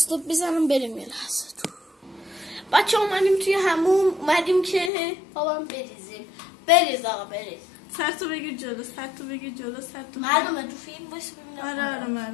بزنم بریم یه لحظه تو بچه ها اومدیم توی همون اومدیم که بابام بریزیم بریز آقا بریز سر تو بگیر جلو سر تو بگیر جلو سر تو معلومه تو فیلم باشه ببینم آره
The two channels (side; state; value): right; drops out; at 4.9 s